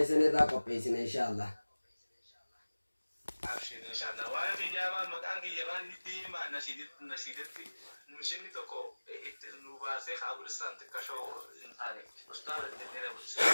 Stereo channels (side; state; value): both; inverted; correlation -1.00